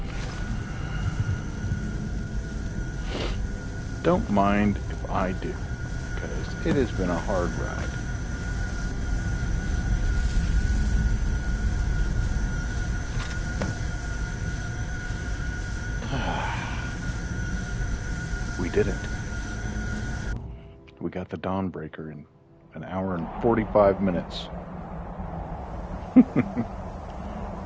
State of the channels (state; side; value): identical; both; correlation 1.00